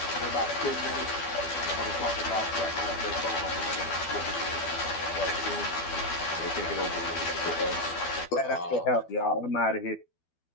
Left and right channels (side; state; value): right; late; 12 ms